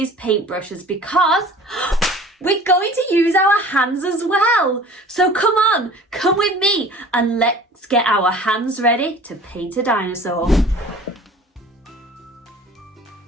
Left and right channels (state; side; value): normal; both; correlation 0.45